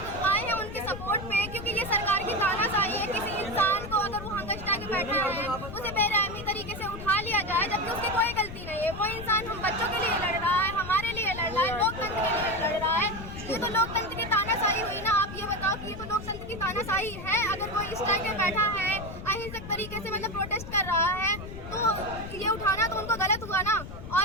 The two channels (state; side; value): noise; left; rumble, 10 dB below the sound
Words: आए हैं उनके सपोर्ट पे, क्योंकि ये सरकार की तानाशाही है। किसी इंसान को अगर वो हंगस्टा के बैठा है उसे बेरहमी तरीके से उठा लिया जाए जबकि उसकी कोई गलती नहीं है। वो इंसान हम बच्चों के लिए लड़ रहा है, हमारे लिए लड़ रहा है, लोकतंत्र के लिए लड़ रहा है। ये तो लोकतंत्र की तानाशाही हुई ना। आप ये बताओ कि ये तो लोकतंत्र की तानाशाही है। अगर कोई इस टाइम पे बैठा है अहिंसक तरीके से मतलब प्रोटेस्ट कर रहा है तो ये उठाना तो उनको गलत हुआ ना।